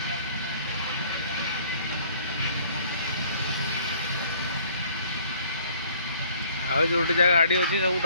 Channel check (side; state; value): both; inverted; correlation -0.57